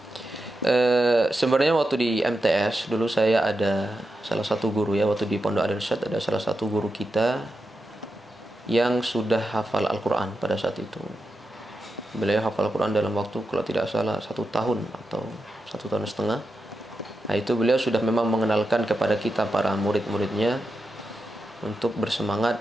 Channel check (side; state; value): both; normal; correlation 0.89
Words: Sebenarnya waktu di MTS dulu saya ada salah satu guru, ya, waktu di Pondok Al-Irsyad ada salah satu guru kita yang sudah hafal Al-Quran pada saat itu. Beliau hafal Al-Quran dalam waktu kalau tidak salah 1 tahun atau 1,5 tahun. Nah, itu beliau sudah memang mengenalkan kepada kita para murid-muridnya untuk